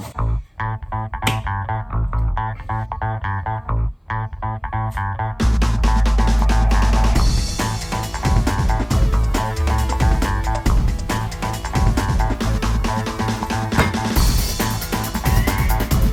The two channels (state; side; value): identical; both; correlation 1.00